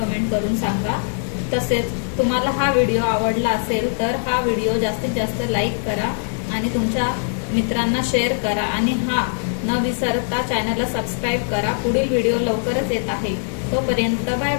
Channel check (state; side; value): silent; right; 60 dB below the other